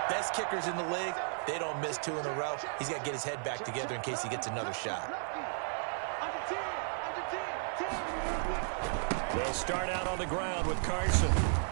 Best kickers in the league, they don't miss 2 in a row. He's got to get his head back together in case he gets another shot. They'll start out on the ground with Carson.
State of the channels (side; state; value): left; silent; 55 dB below the other